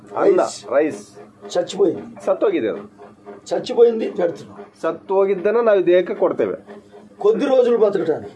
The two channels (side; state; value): both; identical; correlation 1.00